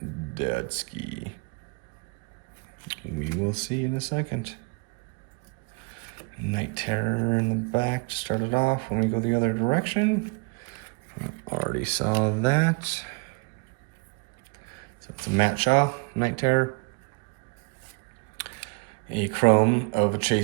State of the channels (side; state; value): left; quieter; 29.8 dB